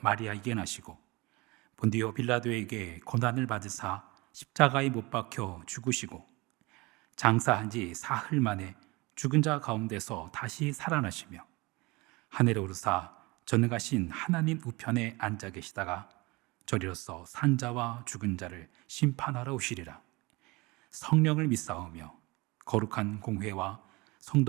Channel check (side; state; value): left; quieter; 24.2 dB